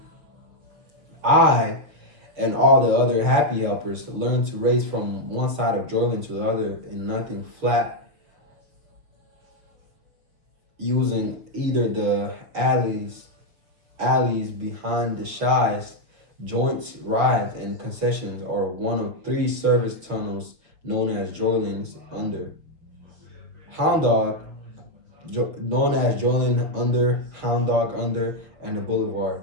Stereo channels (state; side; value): late; left; 6.4 ms